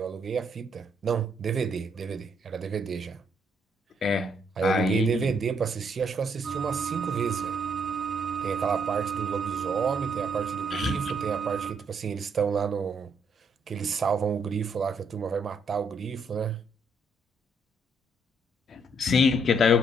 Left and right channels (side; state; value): both; normal; correlation 0.72